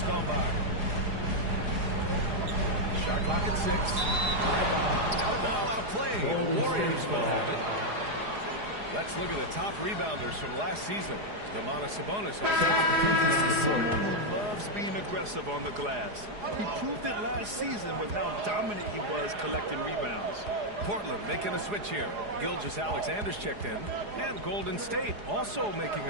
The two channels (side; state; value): left; late; 4.8 ms